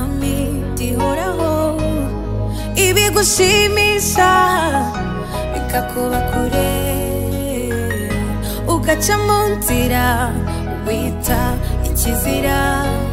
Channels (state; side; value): identical; both; correlation 1.00